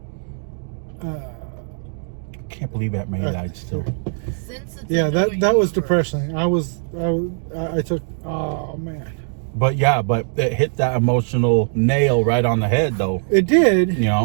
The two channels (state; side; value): silent; left; digital silence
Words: Can't believe that man died still. Since it's Yeah, a that new was universe, depressing. I took, oh man. But yeah, but it hit that emotional nail right on the head, though. It did. You